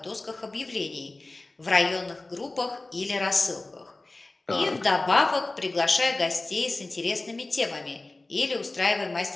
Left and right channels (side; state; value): right; quieter; 3.0 dB